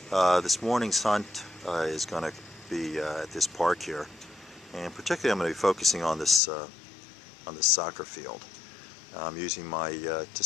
This morning's hunt is going to be at this park here, and particularly I'm going to be focusing on this soccer field. I'm using my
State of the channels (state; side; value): drops out; right; at 6.4 s